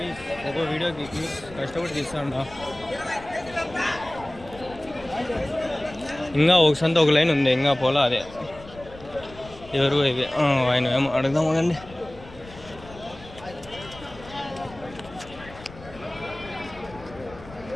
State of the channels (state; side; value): noise; left; rumble, 18 dB below the sound